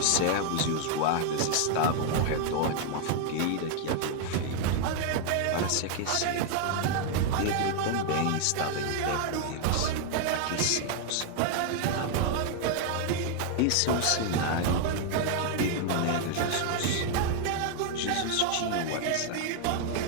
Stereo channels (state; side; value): different; both; correlation 0.00